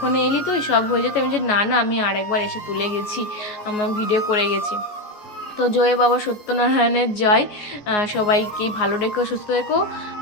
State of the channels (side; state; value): right; late; 14 ms